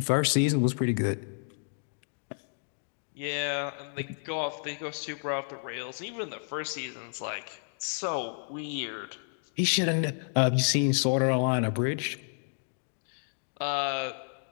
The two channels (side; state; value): right; silent; digital silence